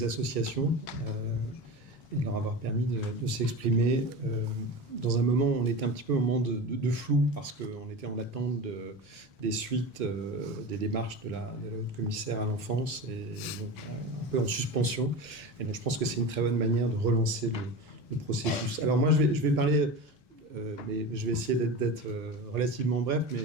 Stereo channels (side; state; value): both; normal; correlation 0.28